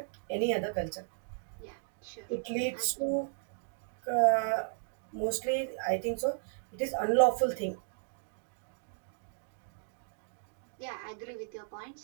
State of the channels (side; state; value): left; silent; digital silence